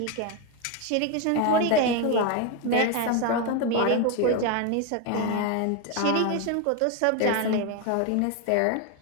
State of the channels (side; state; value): both; different; correlation 0.02